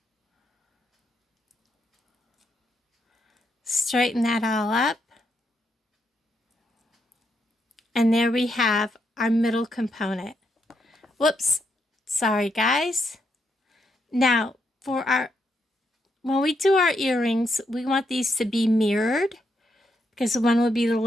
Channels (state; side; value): normal; both; correlation 0.79